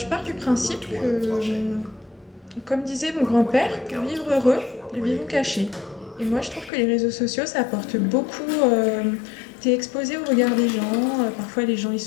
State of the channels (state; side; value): drops out; right; at 6.7 s